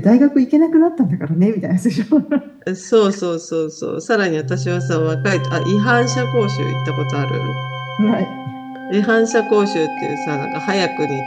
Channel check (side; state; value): both; identical; correlation 1.00